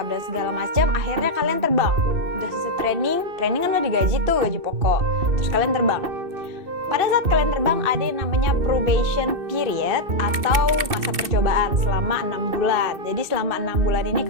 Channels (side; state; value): left; late; 2.6 ms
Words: dan segala macam, akhirnya kalian terbang. Udah selesai training kan udah digaji tuh, gaji pokok. Terus kalian terbang. Pada saat kalian terbang ada yang namanya probation period atau masa percobaan selama 6 bulan. Jadi selama 6 bulan ini